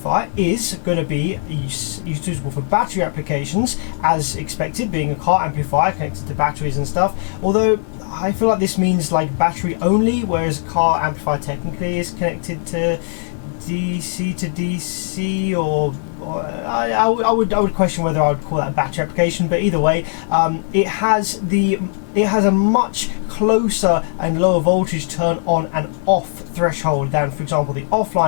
is going to be suitable for battery applications, as expected, being a car amplifier connected to batteries and stuff. Although I feel like this means like battery only, whereas a car amplifier technically is connected to DC to DC, or I would question whether I would call that a battery application. But either way, it has a much closer and lower voltage turn on and off threshold than, for example, the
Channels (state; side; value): silent; right; 66 dB below the other